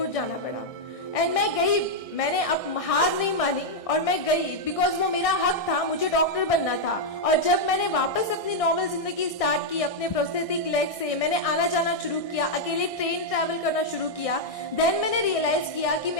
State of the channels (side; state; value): right; late; 1.6 ms